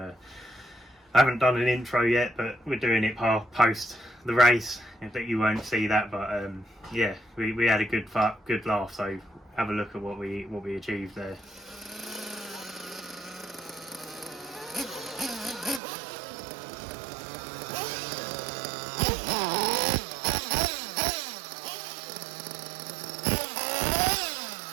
I haven't done an intro yet, but we're doing it post the race. That you won't see that, but yeah, we had a good laugh. So have a look at what we achieved there.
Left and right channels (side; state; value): left; drops out; at 15.8 s